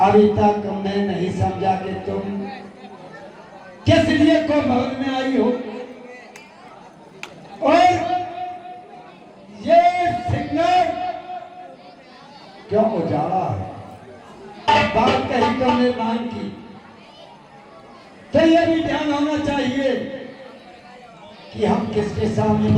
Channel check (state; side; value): identical; both; correlation 1.00